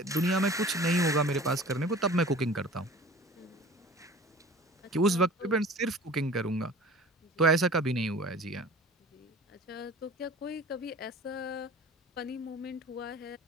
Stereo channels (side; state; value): both; normal; correlation 0.43